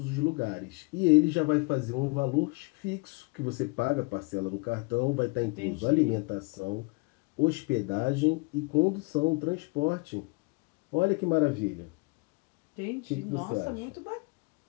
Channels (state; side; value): quieter; right; 28.7 dB